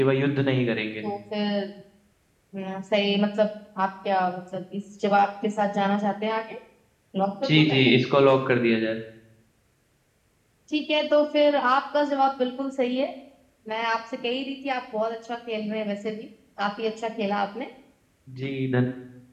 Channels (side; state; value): both; identical; correlation 1.00